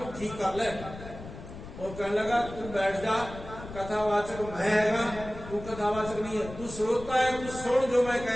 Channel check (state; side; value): noise; left; rumble, 13 dB below the sound